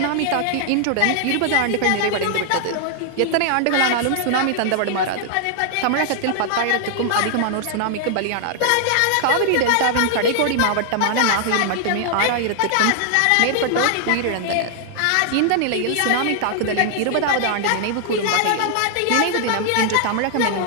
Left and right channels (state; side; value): different; both; correlation 0.00